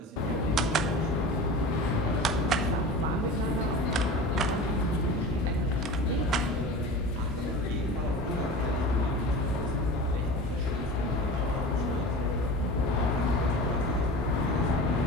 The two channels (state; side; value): normal; both; correlation 0.34